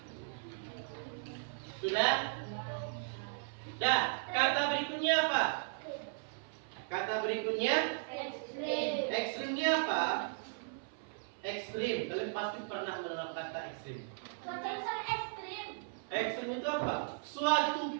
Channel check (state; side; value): silent; left; 53 dB below the other